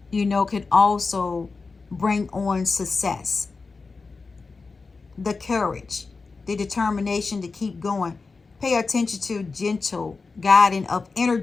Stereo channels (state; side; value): quieter; right; 4.3 dB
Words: you know, can also bring on success. The courage, the determination to keep going. Pay attention to gentle guiding of